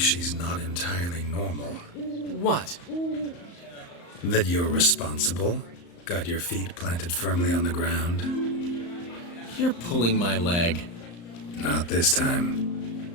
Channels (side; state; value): right; late; 35 ms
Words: not entirely normal. What? That you're responsible, got your feet planted firmly on the ground. You're pulling my leg. Not this time.